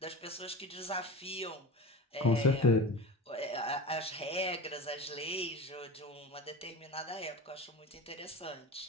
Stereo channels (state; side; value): normal; both; correlation 0.31